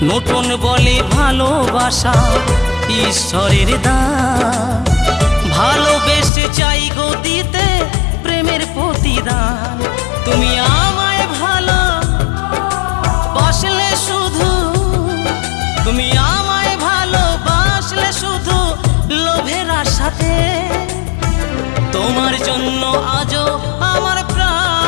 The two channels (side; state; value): right; drops out; at 6.3 s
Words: নতুন বলে ভালোবাসা ঈশ্বরের দান, ভালোবেসে চাই গো দিতে প্রেমের প্রতিদান। তুমি আমায় ভালো বাসলে শুধু, তুমি আমায় ভালোবাসলে শুধু লোভের আশাতে, তোমার জন্য আজও আমার